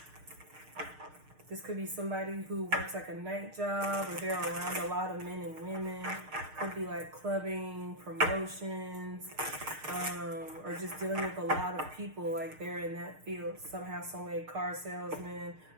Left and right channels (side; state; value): left; late; 6.5 ms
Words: This could be somebody who works like a night job, or they're around a lot of men and women. Could be like clubbing, promotions, or just dealing with a lot of people, like they're in that field somehow, some way, car salesman,